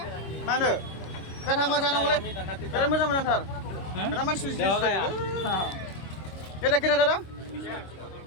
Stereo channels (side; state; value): right; late; 26 ms